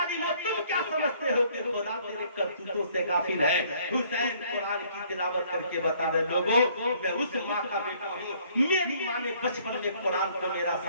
تم کیا سمجھتے ہو کہ خدا تیرے کرتوتوں سے غافل ہے؟ حسین قرآن کی تلاوت کر کے بتا رہے لوگوں میں اس ماں کا بیٹا ہوں، میری ماں نے بچپن میں قرآن کو میرا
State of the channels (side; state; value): both; inverted; correlation -0.62